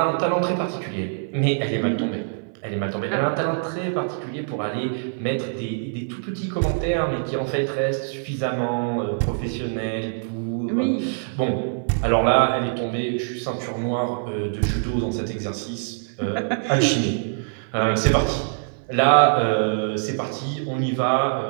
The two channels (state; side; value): silent; left; 58 dB below the other